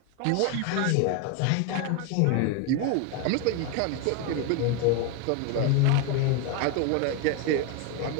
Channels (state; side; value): different; both; correlation 0.01